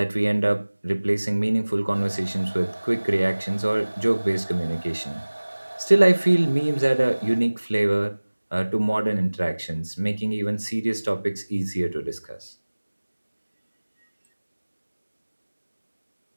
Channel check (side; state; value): both; inverted; correlation -1.00